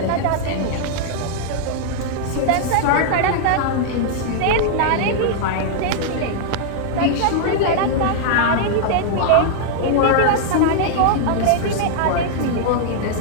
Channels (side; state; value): both; different; correlation -0.01